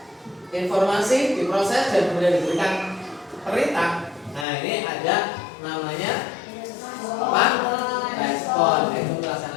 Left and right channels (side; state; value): right; drops out; at 4.5 s